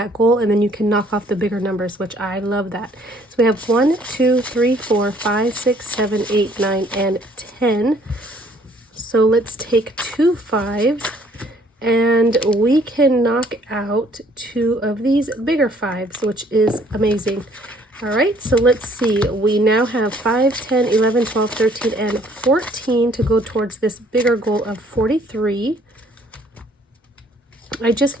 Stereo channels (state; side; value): normal; both; correlation 0.61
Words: goal, and then you can knock off the bigger numbers, which I love that. So we have 1, 2, 3, 4, 5, 6, 7, 8, 9, and 10. So let's take 2 5s, and we can knock out 2 of these bigger 5s, which is amazing. All right, so let's see. We now have 5, 10, 11, 12, 13, and 14 to go towards this bigger goal of 43. I just